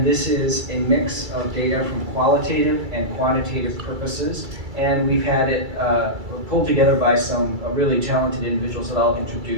this is a mix of data from qualitative and quantitative purposes, and we've had it pulled together by some really talented individuals that I'll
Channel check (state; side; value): late; left; 2.3 ms